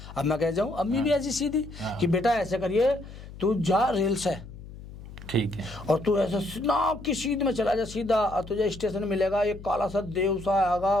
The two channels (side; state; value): left; noise; hum, 15 dB below the sound